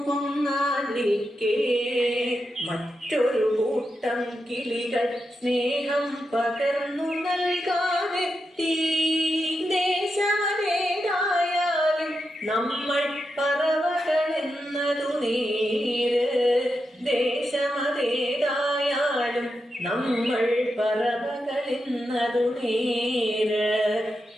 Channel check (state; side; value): normal; both; correlation 0.87